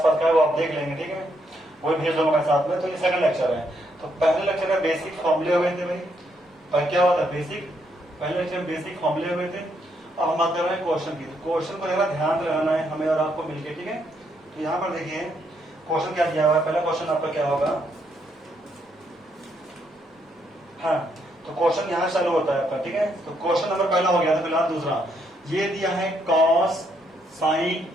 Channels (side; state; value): both; normal; correlation 0.75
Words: का है, वो आप देख लेंगे, ठीक है, वो भेज दूंगा मैं साथ में। तो ये सेकंड लेक्चर है। तो पहले लेक्चर में बेसिक फॉर्मूले हुए थे भाई, पर क्या हुआ था बेसिक, पहले लेक्चर में बेसिक फॉर्मूले हुए थे। अब हम बात कर रहे हैं क्वेश्चन की। तो क्वेश्चन को जरा ध्यान रहना है हमें और आपको मिलकर, ठीक है। तो यहाँ पर देखिए क्वेश्चन क्या दिया हुआ है। पहला क्वेश्चन आपका क्या होगा, हाँ, तो क्वेश्चन यहाँ चालू होता है आपका, ठीक है। तो क्वेश्चन नंबर पहला हो गया था, फिलहाल दूसरा ये दिया है cos sin